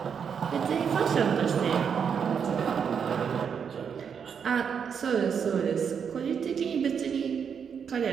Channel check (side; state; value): left; quieter; 7.0 dB